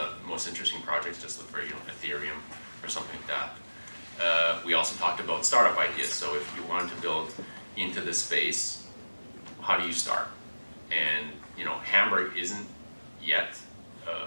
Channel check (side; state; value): both; inverted; correlation -1.00